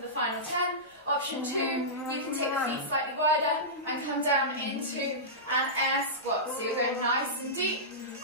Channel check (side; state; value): both; normal; correlation -0.16